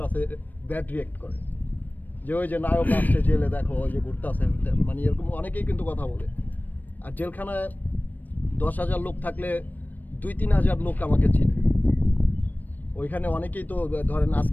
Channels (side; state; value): right; late; 0.087 ms